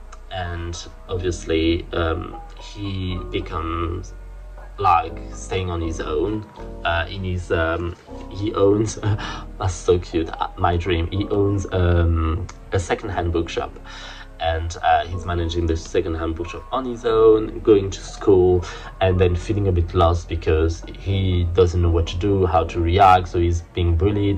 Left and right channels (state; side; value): identical; both; correlation 1.00